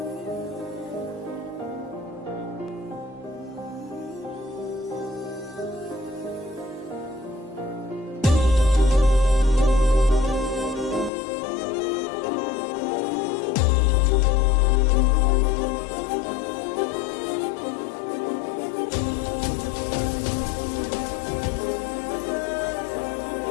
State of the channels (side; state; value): right; drops out; at 11.1 s